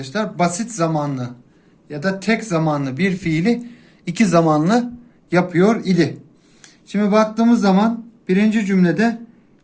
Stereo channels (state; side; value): identical; both; correlation 1.00